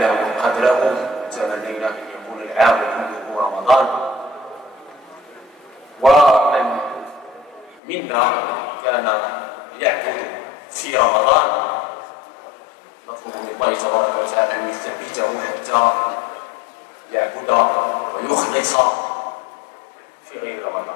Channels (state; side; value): drops out; right; at 7.8 s